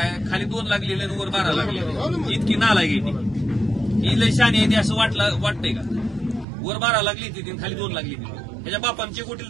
खाली 2 लागलेले आणि वर 12 लागलेले, इतकी नालायक आहे ती. ही लय शानी आहे ती असं वाटतंय का? वर 12 लागली ती आणि खाली 2 लागली ती. ह्याच्या बापांचे कोटील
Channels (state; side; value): drops out; left; at 6.5 s